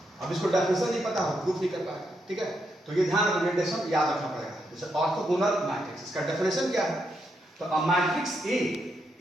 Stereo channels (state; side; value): normal; both; correlation 0.80